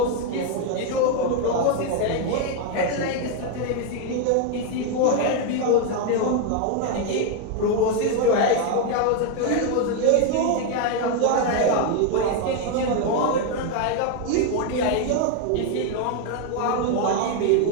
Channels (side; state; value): both; different; correlation 0.01